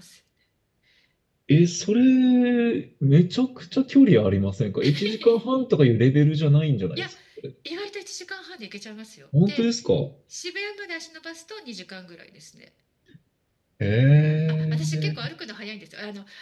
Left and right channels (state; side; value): identical; both; correlation 1.00